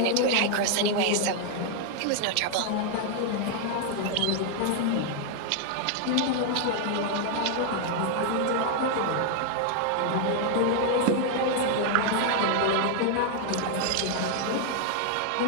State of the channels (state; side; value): different; both; correlation 0.00